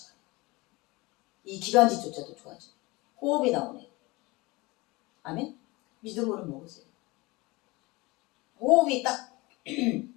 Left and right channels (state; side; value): quieter; right; 23.3 dB